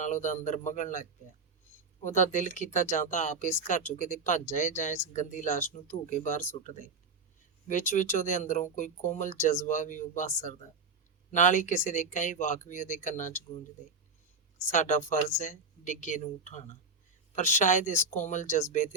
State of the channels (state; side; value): quieter; left; 4.0 dB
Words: ਉਹਦਾ ਅੰਦਰ ਮਗਣ ਲੱਗ ਪਿਆ। ਉਹਦਾ ਦਿਲ ਕੀਤਾ ਜਾਂ ਤਾਂ ਆਪ ਇਸ ਘਰ 'ਚੋਂ ਕਿਤੇ ਭੱਜ ਜਾਏ ਜਾਂ ਇਸ ਗੰਦੀ ਲਾਸ਼ ਨੂੰ ਧੂ ਕੇ ਬਾਹਰ ਸੁੱਟ ਦੇ। ਵਿੱਚ ਉਹਦੇ ਅੰਦਰੋਂ ਕੋਈ ਕੋਮਲ ਜਜ਼ਬਾ ਵੀ ਉਭਾਸਰਦਾ, ਨਾਲ ਹੀ ਕਿਸੇ ਦੇ ਕਈ ਵਾਕ ਵੀ ਉਹਦੇ ਕੰਨਾਂ 'ਚ ਗੂੰਜਦੇ। ਸਾਡਾ ਫਰਜ਼ ਹੈ ਡਿੱਗੇ ਨੂੰ ਉਠਾਉਣਾ। ਪਰ ਸ਼ਾਇਦ ਇਸ ਕੋਮਲ ਜਜ਼ਬੇ